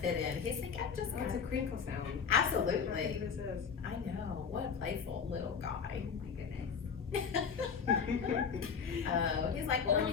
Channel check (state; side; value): quieter; right; 6.4 dB